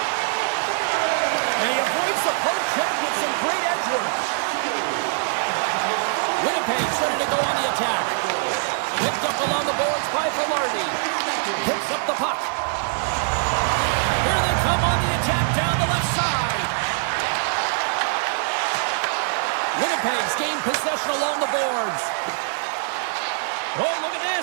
And he avoids the poke check with some great edge work. Winnipeg's ready to go on the attack. Picked up along the boards by Velarde. Picks up the puck. Here they come on the attack down the left side. Winnipeg's gained possession along the boards. Oh, look at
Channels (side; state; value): left; silent; digital silence